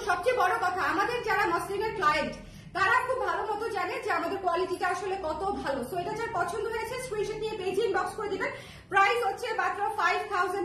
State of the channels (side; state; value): both; identical; correlation 1.00